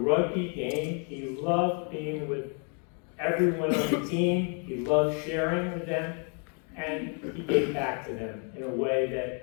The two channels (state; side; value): quieter; right; 40.0 dB